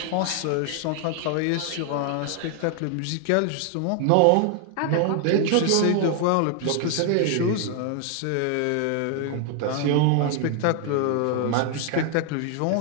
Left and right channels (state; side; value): different; both; correlation 0.00